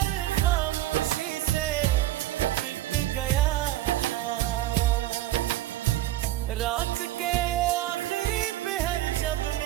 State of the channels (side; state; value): left; quieter; 14.7 dB